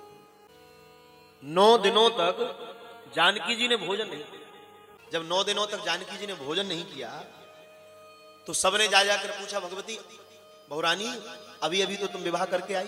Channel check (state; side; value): identical; both; correlation 1.00